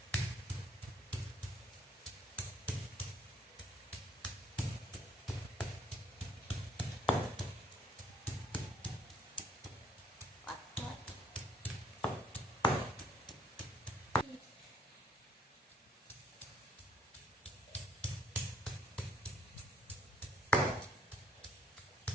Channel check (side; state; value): both; normal; correlation 0.65